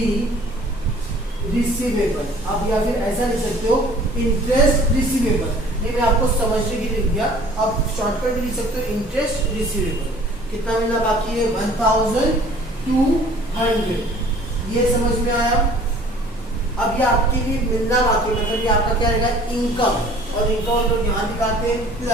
रिसीवेबल। आप या फिर ऐसा लिख सकते हो इंटरेस्ट रिसीवेबल। ये मैं आपको समझने के लिए लिख दिया, आप शॉर्टकट लिख सकते हो इंटरेस्ट रिसीवेबल। कितना मिलना बाकी है, 1,200। ये समझ में आया। अब ये आपके लिए मिलना बाकी है मतलब ये आपका क्या रहेगा, इनकम। और इनकम तो यहाँ दिखाते हैं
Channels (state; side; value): normal; both; correlation 0.51